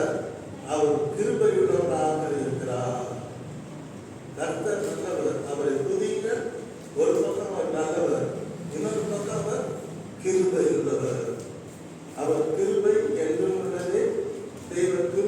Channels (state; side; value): identical; both; correlation 1.00